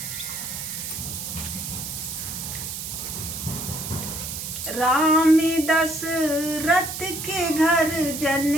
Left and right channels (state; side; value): noise; right; hiss, 6 dB below the sound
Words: राम दशरथ के घर जन